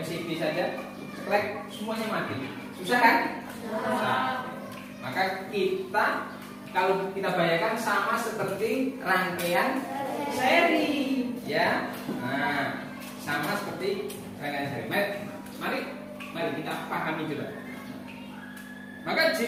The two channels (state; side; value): identical; both; correlation 1.00